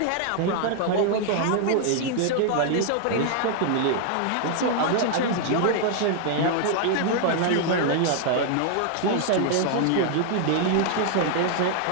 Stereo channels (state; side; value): different; both; correlation 0.00